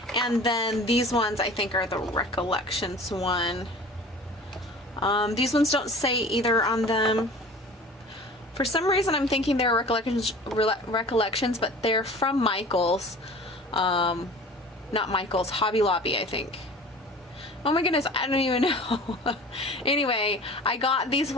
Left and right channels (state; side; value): normal; both; correlation 0.42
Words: And then these ones I think are the Recollections one. These ones don't say either on them. For some reason I'm thinking they're Recollections, but they're from Michaels. Not Michaels, Hobby Lobby, I think. Oh my goodness, I don't even know. Anyway, I got these